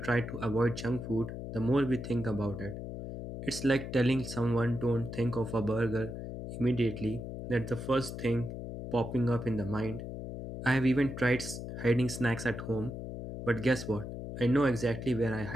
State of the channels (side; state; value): left; noise; hum, 8 dB below the sound